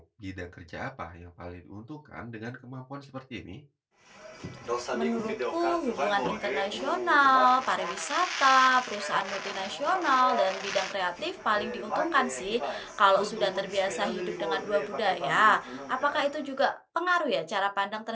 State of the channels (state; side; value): identical; both; correlation 1.00